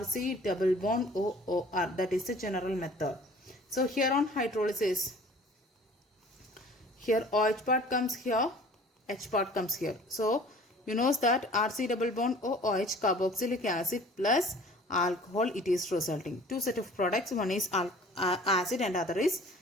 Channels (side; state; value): both; normal; correlation 0.49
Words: double bond OOR, that is the general method. So here on hydrolysis, here OH part comes here, H part comes here. So you know that RC double bond OOH, carboxylic acid plus alcohol, it is resulting. Two set of products, one is acid and other is